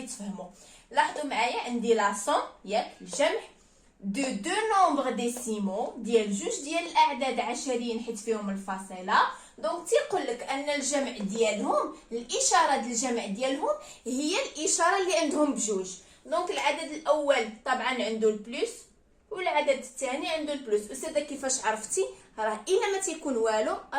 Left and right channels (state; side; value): identical; both; correlation 1.00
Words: تفهموا. لاحظوا معايا عندي لا سوم ياك الجمع دو دو نومبر ديسيمو ديال جوج ديال الاعداد عشريين حيت فيهم الفاصله. دونك تيقول لك ان الجمع ديالهم، الاشاره ديال الجمع ديالهم هي الاشاره اللي عندهم بجوج. دونك العدد الاول طبعا عنده البلس والعدد الثاني عنده البلس. استاذه كيفاش عرفتي؟ راه الا ما تيكون والو